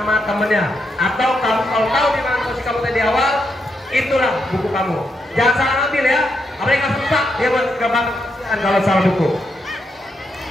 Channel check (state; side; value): normal; both; correlation 0.81